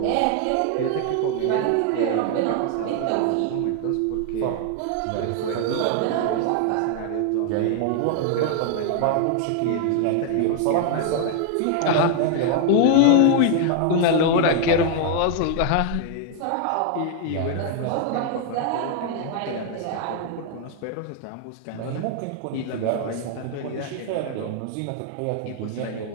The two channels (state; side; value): different; both; correlation 0.00